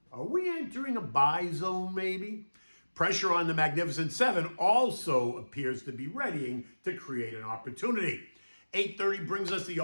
are we entering a buy zone maybe? Pressure on the Magnificent Seven also appears to be readying to create an opportunity. 8:30 brings us the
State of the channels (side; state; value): both; inverted; correlation -1.00